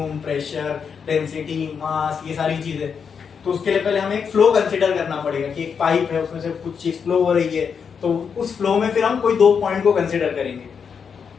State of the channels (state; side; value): quieter; right; 6.5 dB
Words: प्रेशर, डेंसिटी, मास, ये सारी चीजें। तो उसके लिए पहले हमें एक फ्लो कंसिडर करना पड़ेगा कि एक पाइप है, उसमें से कुछ चीज फ्लो हो रही है, तो उस फ्लो में फिर हम कोई दो पॉइंट को कंसिडर करेंगे।